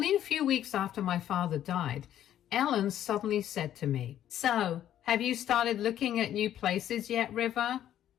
a few weeks after my father died, Ellen suddenly said to me, "So, have you started looking at new places yet, River?"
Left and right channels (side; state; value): right; quieter; 11.3 dB